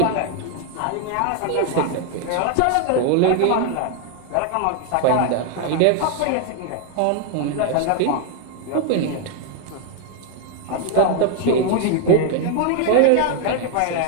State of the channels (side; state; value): both; different; correlation 0.00